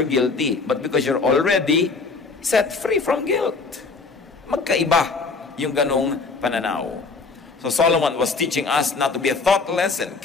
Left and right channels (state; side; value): quieter; right; 4.2 dB